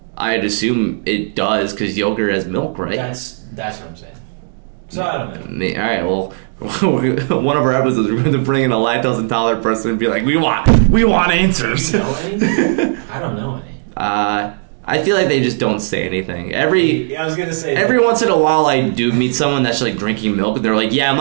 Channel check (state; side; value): silent; left; digital silence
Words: I'd assume it does, because yogurt has milk, right? That's what I'm saying. So I don't know. All right, well, one of our episodes we're going to bring in a lactose intolerant person and be like, we want answers. Do you know any? I don't know any. I feel like they just don't say anything. I was gonna say every once in a while I do meet someone that's like drinking milk, and they're like, yeah, I'm